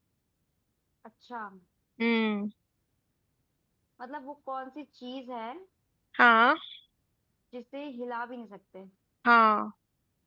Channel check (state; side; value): identical; both; correlation 1.00